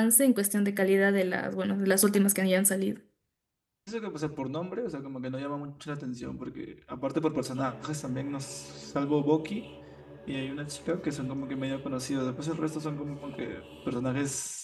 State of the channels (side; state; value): both; identical; correlation 1.00